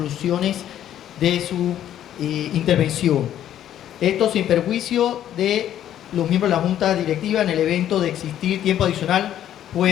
de su intervención. Esto sin perjuicio de los miembros de la junta directiva, en el evento de existir tiempo adicional,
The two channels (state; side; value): quieter; right; 11.2 dB